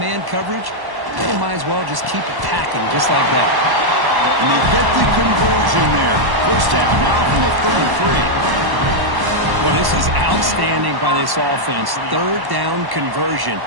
coverage, you might as well just keep attacking just like that. And they get the conversion there. 1st down now from the 33. Well, this is outstanding by this offense. 3rd down conversion.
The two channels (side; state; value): left; late; 1.1 ms